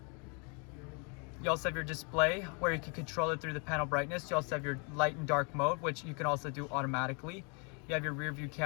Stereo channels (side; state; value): right; quieter; 35.4 dB